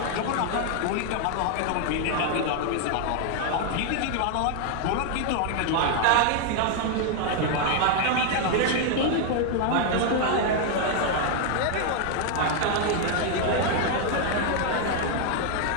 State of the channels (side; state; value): both; different; correlation 0.00